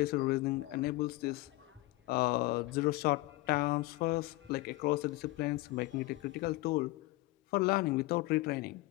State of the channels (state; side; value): quieter; right; 19.9 dB